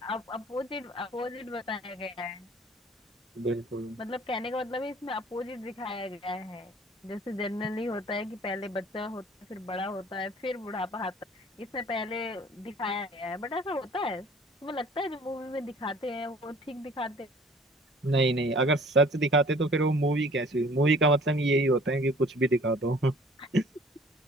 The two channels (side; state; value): both; normal; correlation 0.52